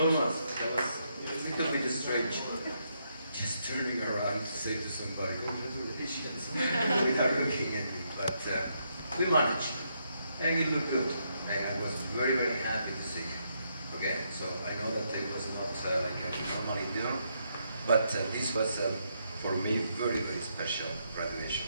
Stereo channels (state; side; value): inverted; both; correlation -0.78